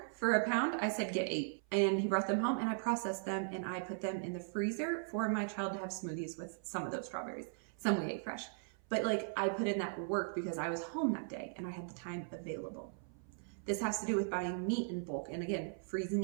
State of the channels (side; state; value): left; silent; 52 dB below the other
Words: for a pound. I said get 8. And he brought them home and I processed them and I put them in the freezer for my child to have smoothies with some of those strawberries. Some we ate fresh. But I put in that work because I was home that day and I had the time available. This has to do with buying meat in bulk and again, freezing